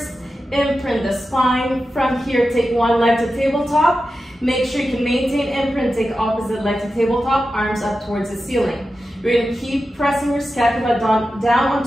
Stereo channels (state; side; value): normal; both; correlation 0.92